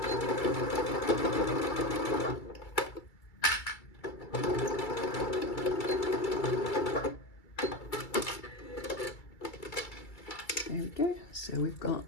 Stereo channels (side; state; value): right; late; 2.3 ms